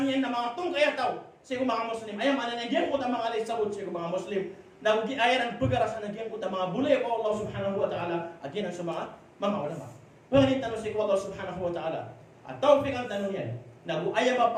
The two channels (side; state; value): both; identical; correlation 1.00